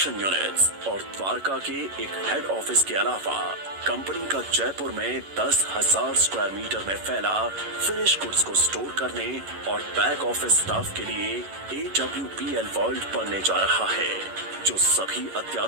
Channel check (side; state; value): left; late; 11 ms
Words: यूनिट्स और द्वारका के एक हेड ऑफिस के अलावा कंपनी का जयपुर में 10,000 स्क्वायर मीटर में फैला फिनिश गुड्स को स्टोर करने और बैक ऑफिस स्टाफ के लिए AWPL वर्ल्ड बनने जा रहा है, जो सभी